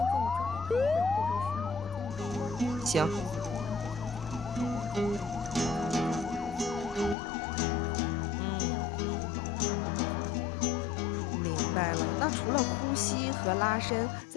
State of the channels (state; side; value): drops out; right; at 7.2 s